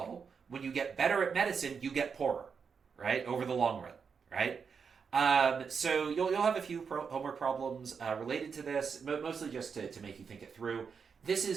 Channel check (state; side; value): quieter; left; 6.0 dB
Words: when you get better at medicine, you get poorer, right? Over the long run. Right? So you'll have a few homework problems related to this, mostly just to make you think it through. This